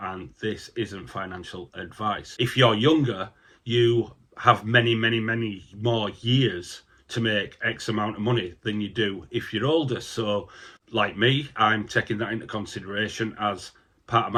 and this isn't financial advice. If you're younger, you have many more years to make X amount of money than you do if you're older. So, like me, I'm taking that into consideration as part of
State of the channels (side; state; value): both; identical; correlation 1.00